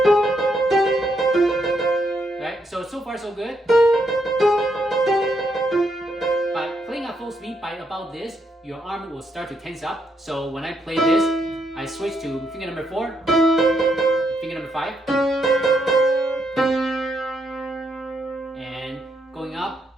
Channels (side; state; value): both; normal; correlation 0.77